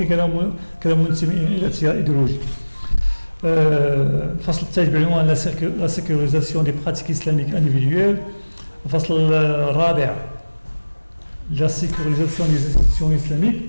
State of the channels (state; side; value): inverted; both; correlation -1.00